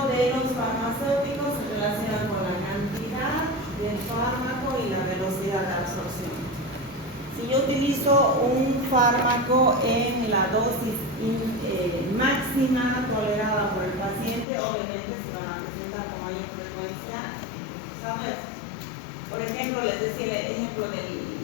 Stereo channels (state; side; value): drops out; right; at 14.5 s